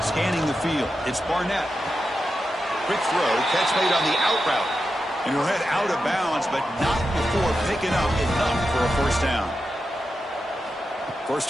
the field, it's Barnett. Quick throw, catch made on the out route. And he'll head out of bounds, but not before picking up enough for a 1st down. 1st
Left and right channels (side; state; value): both; normal; correlation 0.89